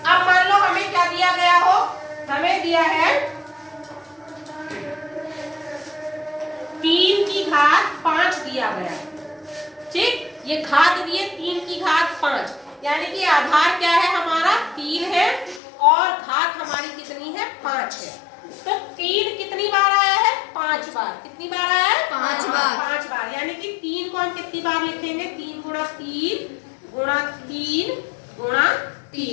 अब मान लो हमें क्या दिया गया हो, हमें दिया है 3 की घात 5 दिया गया। ठीक, ये घात दिए 3 की घात 5, यानी कि आधार क्या है हमारा, 3 है, और घात हमारी कितनी है, 5 है। तो 3 कितनी बार आया है, 5 बार। कितनी बार आया है, 5 बार। 5 बार, यानी कि 3 को हम कितनी बार लिखेंगे, 3 गुणा 3 गुणा 3 गुणा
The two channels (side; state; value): right; drops out; at 15.6 s